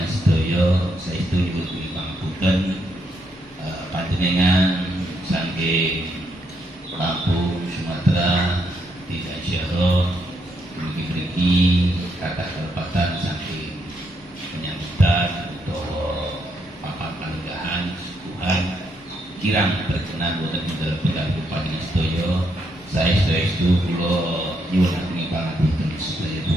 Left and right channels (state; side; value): normal; both; correlation 0.77